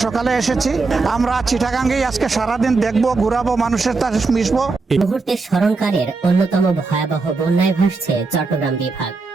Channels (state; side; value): quieter; left; 4.0 dB